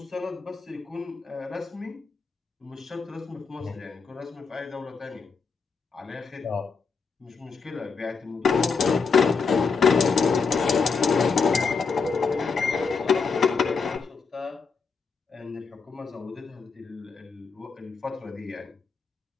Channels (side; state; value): right; quieter; 5.1 dB